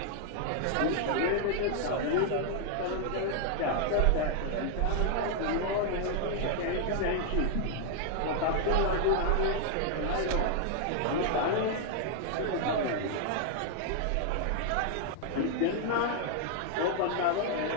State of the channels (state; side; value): different; both; correlation 0.00